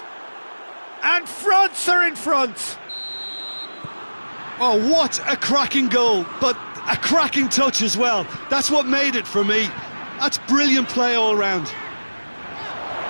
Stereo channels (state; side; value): inverted; both; correlation -1.00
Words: And France are in front! Oh, what a cracking goal, but a cracking touch as well. That's what made it for me. That's brilliant play all round.